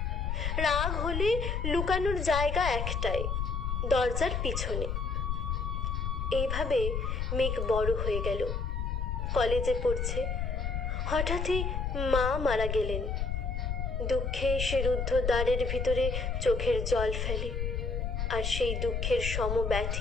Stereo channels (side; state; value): left; noise; rumble, 1 dB below the sound